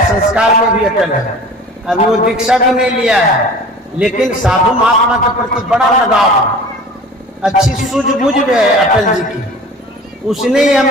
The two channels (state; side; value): normal; both; correlation 0.42